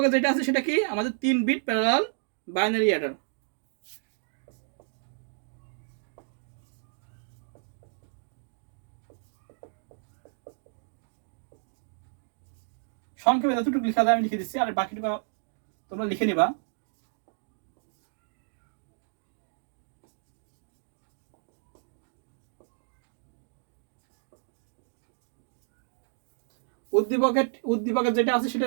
যেটা আছে সেটা কি আমাদের 3 বিট প্যারালাল বাইনারি অ্যাডার। সংক্ষেপে যতটুকু লেখা যায় আমি লিখে দিচ্ছি, আর বাকিটুকু তোমরা লিখে নিবা। উদ্দীপকের যেটা আছে সেটা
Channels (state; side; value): silent; left; digital silence